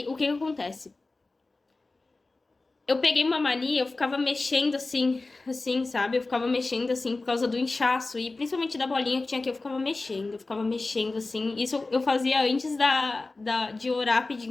o que acontece? Eu peguei uma mania, eu ficava mexendo assim, sabe? Eu ficava mexendo assim por causa do inchaço. E principalmente da bolinha que tinha aqui, eu ficava mexendo assim. Isso eu fazia antes de orar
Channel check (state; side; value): quieter; right; 3.4 dB